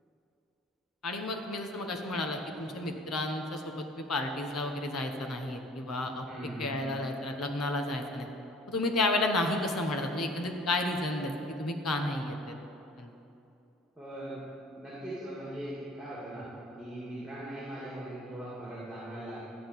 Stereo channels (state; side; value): normal; both; correlation 0.51